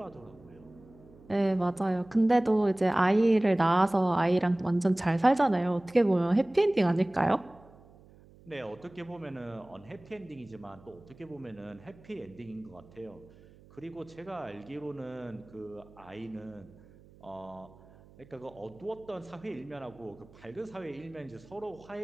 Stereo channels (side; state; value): right; noise; hum, 24 dB below the sound